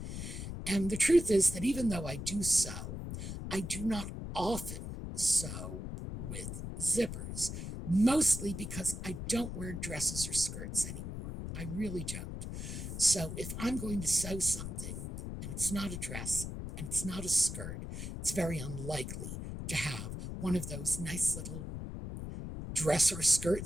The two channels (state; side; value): noise; left; rumble, 6 dB below the sound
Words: And the truth is that even though I do sew, I do not often sew with zippers, mostly because I don't wear dresses or skirts anymore. I really don't. So if I'm going to sew something, and it's not a dress, and it's not a skirt, it's very unlikely to have one of those nice little dress or skirt